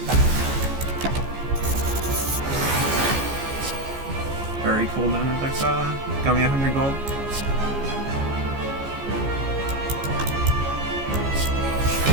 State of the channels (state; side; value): late; left; 15 ms